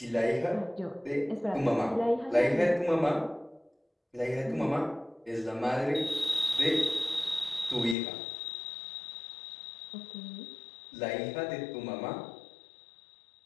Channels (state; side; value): drops out; right; at 8.0 s